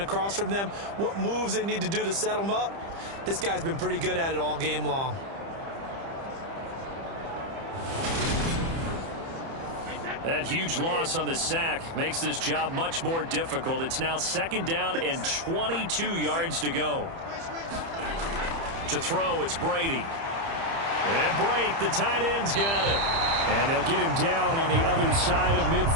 from them, what moves they need to do to set them up. This guy's been pretty good at it all game long. That huge loss on the sack makes this job much more difficult. It's now 2nd down and 22 yards to go. To throw, it's Brady. And Brate, the tight end's got it. And they'll get him down on the other side of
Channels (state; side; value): late; left; 30 ms